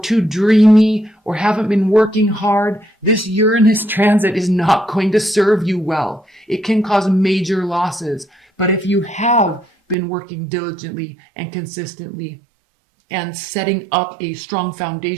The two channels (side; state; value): left; drops out; at 10.0 s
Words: too dreamy or haven't been working hard, this Uranus transit is not going to serve you well. It can cause major losses. But if you have been working diligently and consistently and setting up a strong